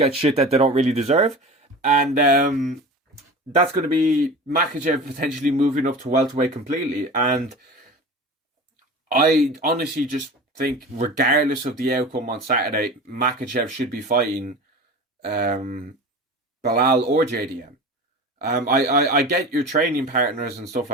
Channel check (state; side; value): normal; both; correlation 0.34